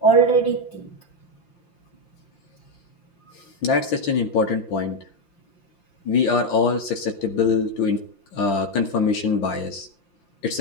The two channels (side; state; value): right; late; 5.8 ms